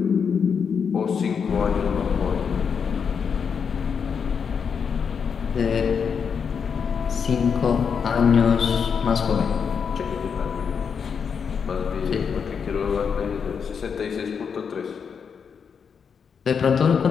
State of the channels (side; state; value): right; quieter; 6.5 dB